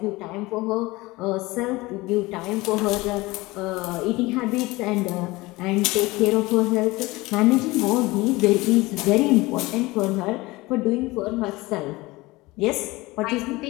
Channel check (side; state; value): right; quieter; 21.2 dB